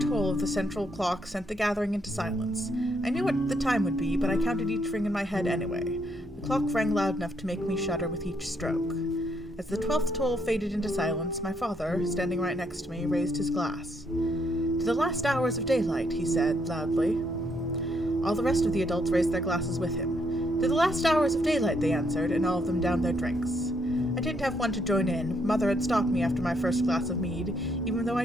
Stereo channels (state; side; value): normal; both; correlation 0.74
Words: of the central clock sent the gathering into silence. I knew what the time would be, but I counted each ring in my head anyway. The clock rang loud enough to make me shudder with each stroke. As the 12th toll faded into silence, my father, standing right next to me, raised his glass. "To the last hours of daylight," he said, loudly. All the rest of the adults raised their glasses with him. "To the last hours of daylight," they answered, and all of them downed their drinks. I didn't have one to join in. Mother had stopped me after my first glass of mead, even though